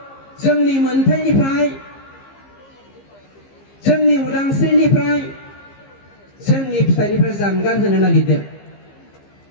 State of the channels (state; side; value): late; right; 15 ms